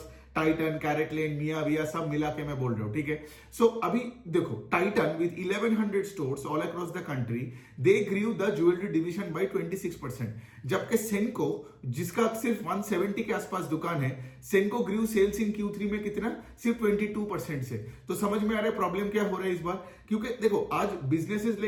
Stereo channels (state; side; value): identical; both; correlation 1.00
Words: टाइटन, कैरेटलेन, मियाविया सब मिला के मैं बोल रहा हूं। ठीक है, सो अभी देखो Titan with 1100 stores all across the country, they grew the jewellery division by 26%, जबकि सेंको जिसका सिर्फ 170 के आसपास दुकान है, सेंको ग्रीव सेल्स इन Q3 में कितना, सिर्फ 22% से। तो समझ में आ रहा है प्रॉब्लम क्या हो रहा है इस बार, क्योंकि देखो आज बिजनेसेस